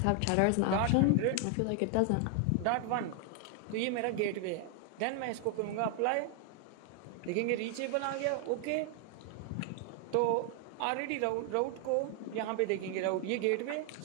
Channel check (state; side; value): different; both; correlation 0.00